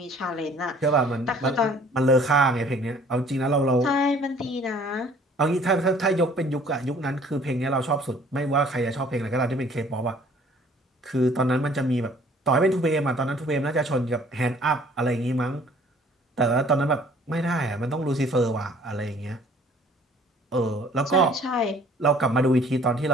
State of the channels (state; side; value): normal; both; correlation 0.55